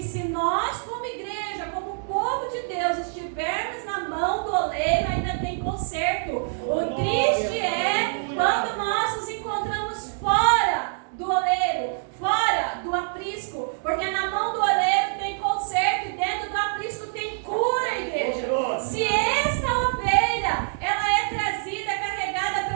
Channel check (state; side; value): silent; left; digital silence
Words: se nós, como igreja, como povo de Deus, estivermos na mão do oleiro, ainda tem conserto. O triste é quando nós nos encontramos fora do oleiro, fora do aprisco, porque na mão do oleiro tem conserto e dentro do aprisco tem cura, igreja. Se esta ovelha, ela é trazida, carregada